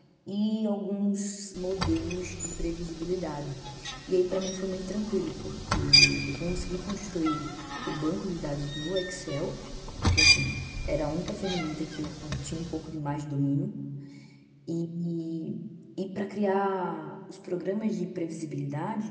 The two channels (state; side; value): identical; both; correlation 1.00